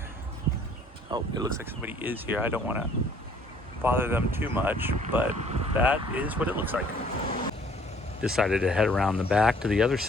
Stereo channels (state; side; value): normal; both; correlation 0.58